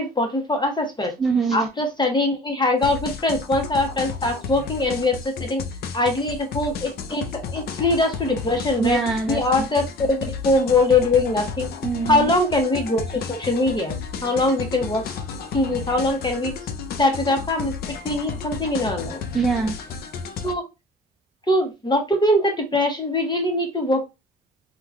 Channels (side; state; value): both; normal; correlation 0.42